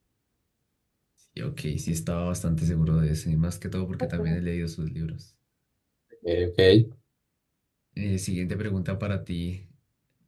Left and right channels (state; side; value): identical; both; correlation 1.00